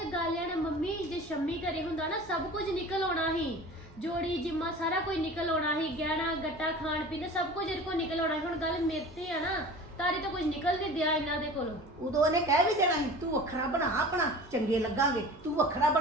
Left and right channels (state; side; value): normal; both; correlation 0.39